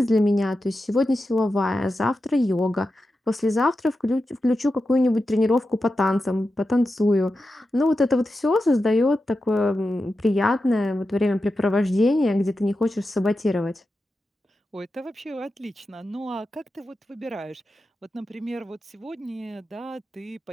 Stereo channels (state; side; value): normal; both; correlation 0.90